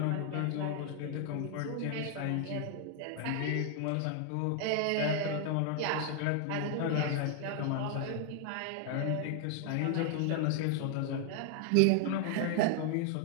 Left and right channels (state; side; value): different; both; correlation 0.00